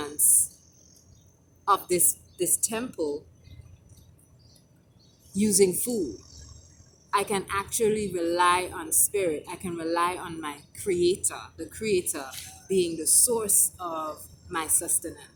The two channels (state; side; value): identical; both; correlation 1.00